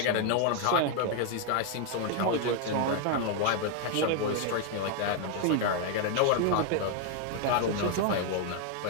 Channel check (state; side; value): different; both; correlation 0.00